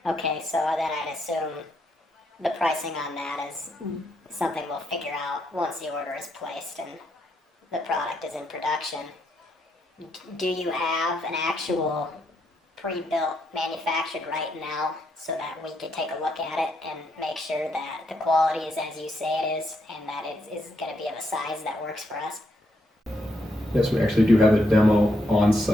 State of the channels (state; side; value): normal; both; correlation 0.78